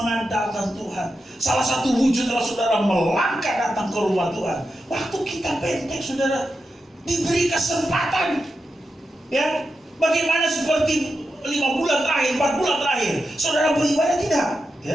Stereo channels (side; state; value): both; normal; correlation 0.88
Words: Tuhan, salah satu wujud adalah saudara melangkah datang ke rumah Tuhan. Waktu kita pendek, saudara, diberi kesempatan. Ya, bagaimana seperti 5 bulan terakhir, 4 bulan terakhir, saudara beribadah tidak?